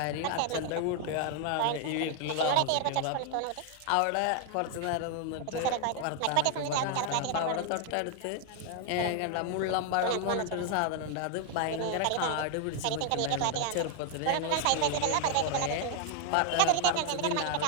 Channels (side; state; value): both; different; correlation 0.00